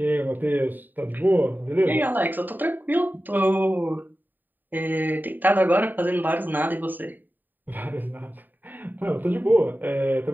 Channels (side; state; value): left; late; 0.090 ms